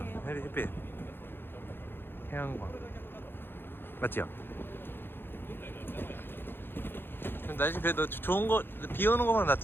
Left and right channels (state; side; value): late; right; 0.10 ms